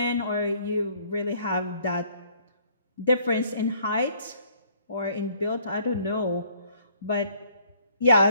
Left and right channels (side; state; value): both; inverted; correlation -0.61